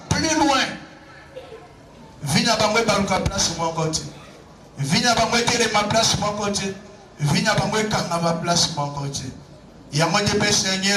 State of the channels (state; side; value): identical; both; correlation 1.00